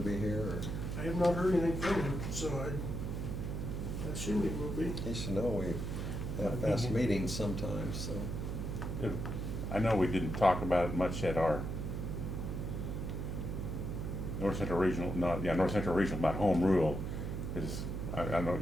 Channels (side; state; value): right; noise; hum, 3 dB below the sound